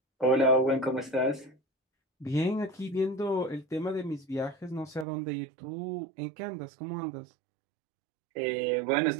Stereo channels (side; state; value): left; drops out; at 5.1 s